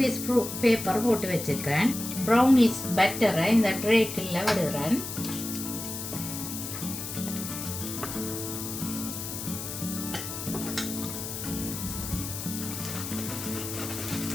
ப்ரூஃப் பேப்பர் போட்டு வச்சிருக்கேன். ப்ரௌனீஸ் பட்டரை இந்த ட்ரேக்குள்ள விடுறேன்.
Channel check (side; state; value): left; noise; hiss, 7 dB below the sound